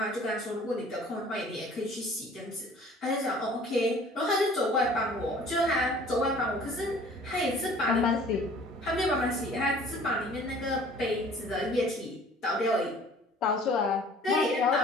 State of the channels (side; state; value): both; normal; correlation 0.50